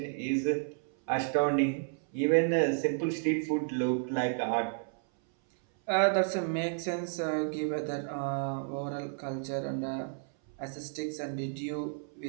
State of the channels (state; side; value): silent; left; 57 dB below the other